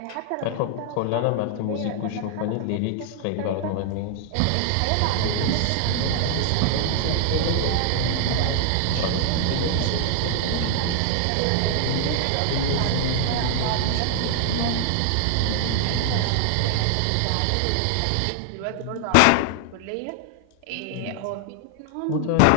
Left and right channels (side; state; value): both; different; correlation 0.00